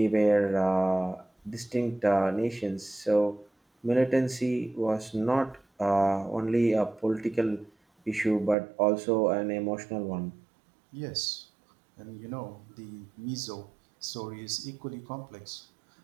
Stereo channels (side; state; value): left; drops out; at 8.6 s